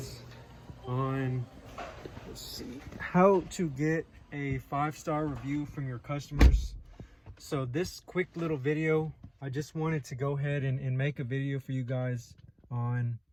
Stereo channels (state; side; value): identical; both; correlation 1.00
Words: on, let's see, how to get a 5-star review from your customers. So this quick little video, I just wanted to go ahead and make a video for you guys on